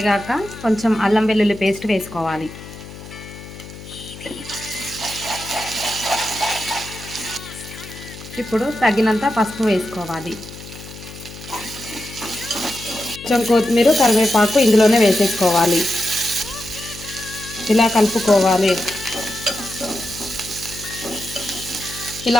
కొంచెం అల్లం వెల్లుల్లి పేస్ట్ వేసుకోవాలి. ఇప్పుడు తగినంత పసుపు వేసుకోవాలి. కొంచెం కొత్తిమీర కరివేపాకు ఇందులోనే వేసేసుకోవాలి. ఇలా కలుపుకోవాలి.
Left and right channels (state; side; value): noise; left; hum, 15 dB below the sound